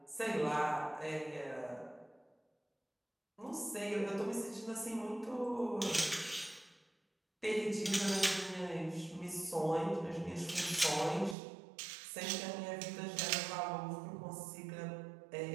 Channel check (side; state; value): left; drops out; at 11.4 s